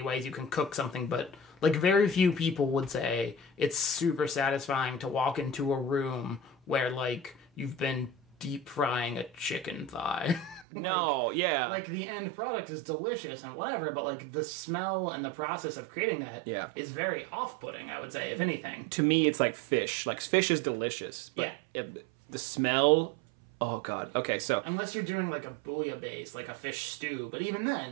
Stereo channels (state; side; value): drops out; left; at 10.7 s